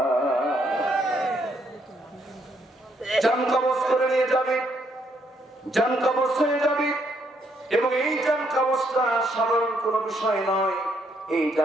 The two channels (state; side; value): normal; both; correlation 0.73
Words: জান কবজ করে নিয়ে যাবে, জান কবজ হয়ে যাবে। এবং এই জান কবজটা সাধারণ কোনো বিষয় নয়, এই